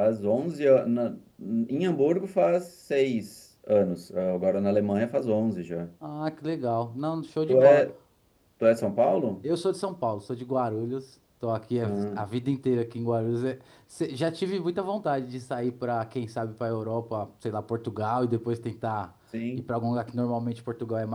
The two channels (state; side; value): identical; both; correlation 1.00